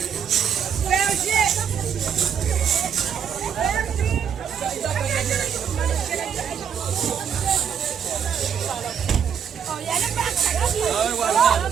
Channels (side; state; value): left; quieter; 7.7 dB